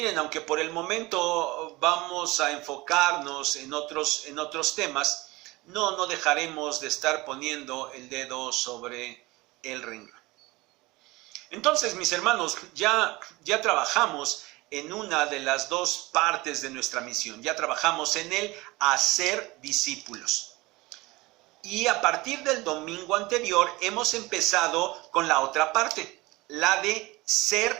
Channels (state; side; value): quieter; left; 21.5 dB